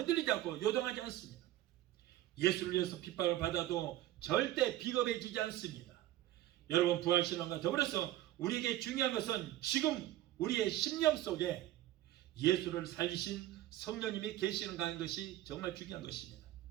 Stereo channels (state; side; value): quieter; left; 14.3 dB